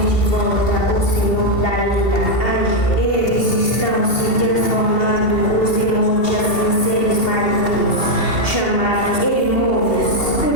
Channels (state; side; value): late; right; 2.7 ms